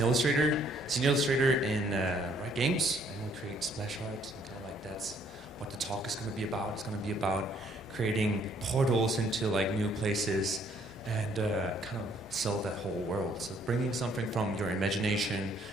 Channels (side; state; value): both; normal; correlation 0.65